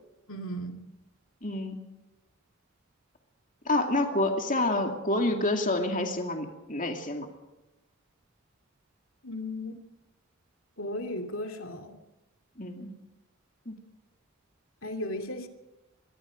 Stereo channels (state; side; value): normal; both; correlation 0.14